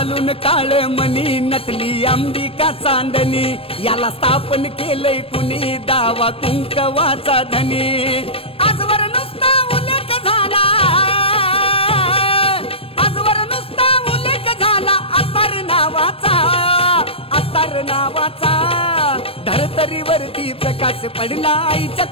काळ मणी नटली अंबिका चांदणी याला स्थापन केलंय कुणी दावा कुंकवाचा धनी आजवर नुसता उल्लेख झाला आजवर नुसता उल्लेख झाला अत्तर नावाचा धरतरीवरती प्रकाश पडला आईच्या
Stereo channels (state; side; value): late; right; 0.28 ms